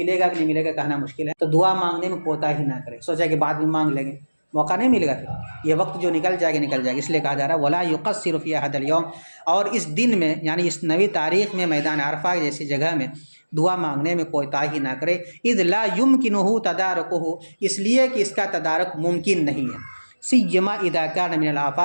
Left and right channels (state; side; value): inverted; both; correlation -1.00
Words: گا کہ نہیں ملے گا کہنا مشکل ہے، تو دعا مانگنے میں کوتاہی نہ کرے، سوچا کہ بعد میں مانگ لیں گے، موقع نہیں ملے گا، پھر یہ وقت جو نکل جائے گا نکل جائے گا، اس لیے کہا جا رہا ہے وَلَا يُقَصِّرُ فِي هَذَا الْيَوْمِ، اور اس دن میں، یعنی اس نوی تاریخ میں میدان عرفہ جیسی جگہ میں دعا مانگنے میں کوتاہی نہ کرے۔ اذ لا يمكنه تدارکہ، اس لیے کہ اس کا تدارک ممکن نہیں ہے، سیما اذا كان من